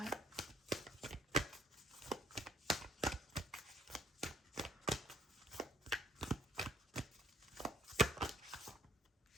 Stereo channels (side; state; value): both; normal; correlation 0.62